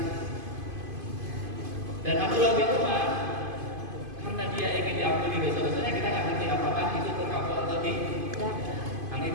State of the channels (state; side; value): late; left; 2.5 ms